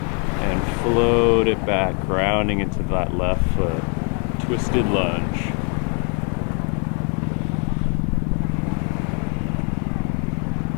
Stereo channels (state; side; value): quieter; right; 38.4 dB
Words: and float it back, grounding into that left foot. Twisted lunge.